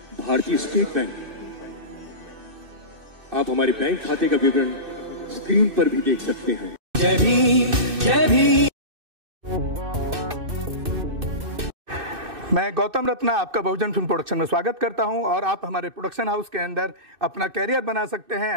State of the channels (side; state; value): left; late; 2.6 ms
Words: भारतीय स्टेट बैंक। आप हमारे बैंक खाते का विवरण स्क्रीन पर भी देख सकते हैं। जय भीम, जय भीम। मैं गौतम रत्ना आपका बहुजन फिल्म प्रोडक्शन में स्वागत करता हूं और आप हमारे प्रोडक्शन हाउस के अंदर अपना कैरियर बना सकते